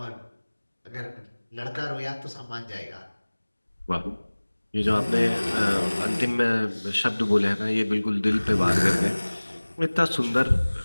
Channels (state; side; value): inverted; both; correlation -1.00